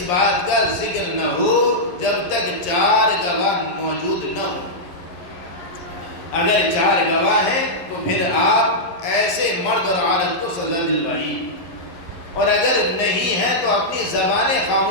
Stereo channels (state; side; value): late; right; 11 ms